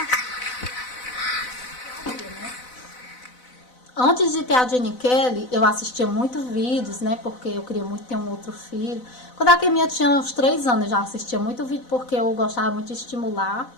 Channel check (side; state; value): right; late; 4.0 ms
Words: Antes de ter a Jenny Kelly, eu assistia muito vídeos, né? Porque eu queria muito ter um outro filho. Quando a Keminha tinha uns 3 anos, eu já assistia muito vídeo, porque eu gostava muito de estimular.